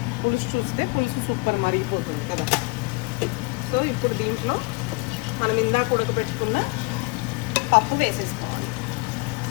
పులుసు చూస్తే పులుసు సూపర్ మరిగిపోతుంది కదా. సో ఇప్పుడు దీంట్లో మనం ఇందాక ఉడకబెట్టుకున్న పప్పు వేసేసుకోవాలి.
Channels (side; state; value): right; quieter; 27.2 dB